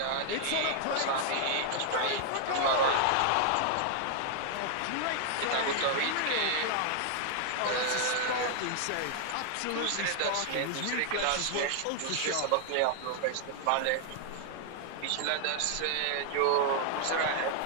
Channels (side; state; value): both; different; correlation 0.00